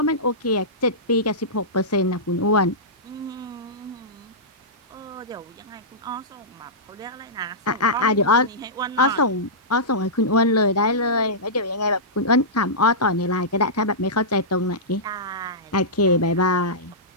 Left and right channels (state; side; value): normal; both; correlation -0.16